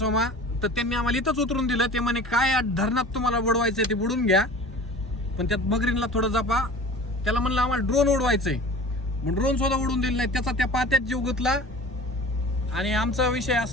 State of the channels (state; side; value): normal; both; correlation 0.41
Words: तर त्यांनी आम्हाला इथंच उतरून दिलं. ते म्हणे काय धरणात तुम्हाला बुडवायचंय ते बुडून घ्या, पण त्यात मगरीनला थोडं जपा. त्याला म्हणलं आम्हाला ड्रोन उडवायचंय, मग ड्रोन सुद्धा उडून दिलं नाही. त्याचा त्या पात्यात जीव गुतला. आणि आमचा विषय